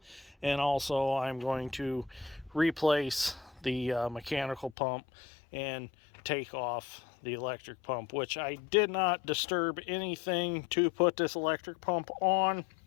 And also I'm going to replace the mechanical pump and take off the electric pump, which I did not disturb anything to put this electric pump on.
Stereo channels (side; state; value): right; drops out; at 4.8 s